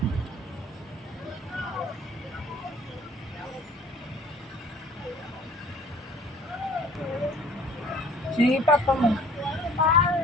Si Papa mo.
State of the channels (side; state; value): both; normal; correlation 0.51